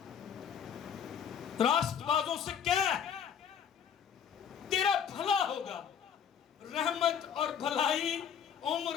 راست بازوں سے کہہ تیرا بھلا ہوگا، رحمت اور بھلائی عمر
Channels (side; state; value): right; quieter; 7.9 dB